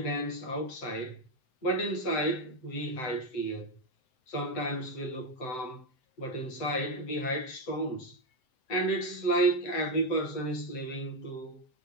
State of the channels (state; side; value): late; right; 7.8 ms